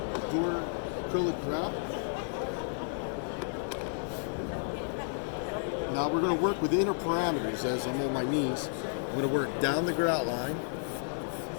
ADURA acrylic grout. Now we're going to work with inner parameters as I'm on my knees. I'm going to work down the grout line.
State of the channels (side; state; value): right; silent; digital silence